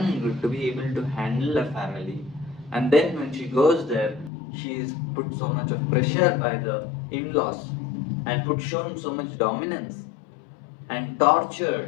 to be able to handle a family. And then when she goes there, She is put so much of pressure by the in-laws and put shown so much dominance and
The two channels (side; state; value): right; drops out; at 4.3 s